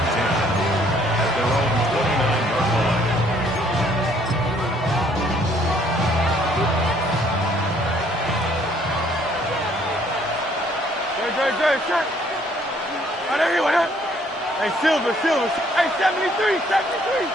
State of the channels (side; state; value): both; normal; correlation 0.63